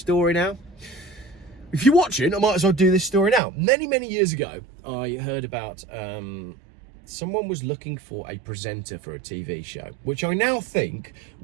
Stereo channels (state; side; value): drops out; left; at 3.4 s